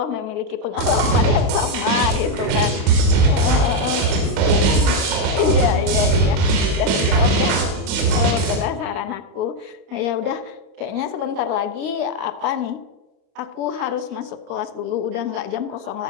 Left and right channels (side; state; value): left; late; 30 ms